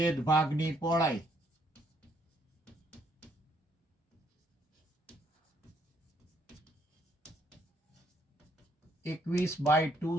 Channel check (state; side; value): normal; both; correlation 0.70